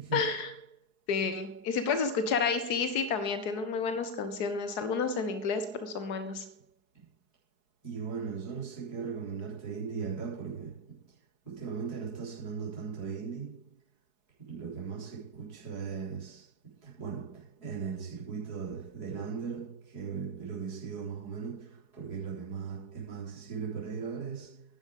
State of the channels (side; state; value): right; late; 4.7 ms